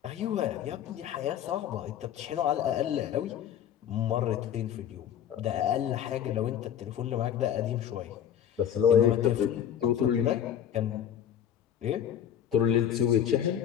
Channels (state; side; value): quieter; right; 9.7 dB